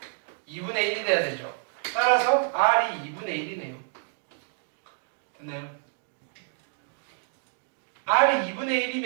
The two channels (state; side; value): silent; left; digital silence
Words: 2분의 1이 돼야 되죠. 따라서 R이 2분의 1이네요. 됐나요? R이 2분의